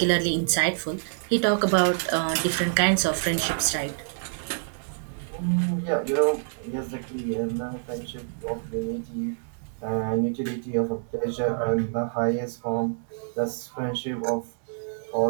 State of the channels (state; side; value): silent; left; digital silence